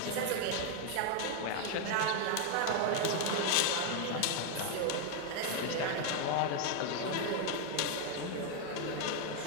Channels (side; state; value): both; different; correlation 0.01